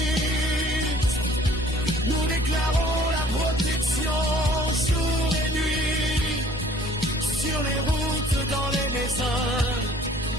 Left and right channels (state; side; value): normal; both; correlation 0.54